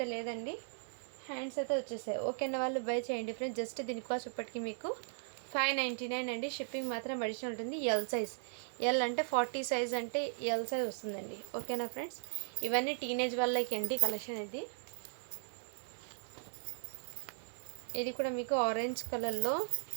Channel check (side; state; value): left; silent; digital silence